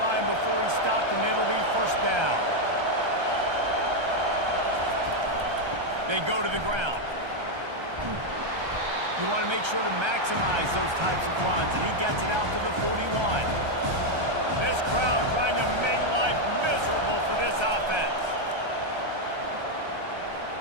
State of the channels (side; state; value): left; late; 1.3 ms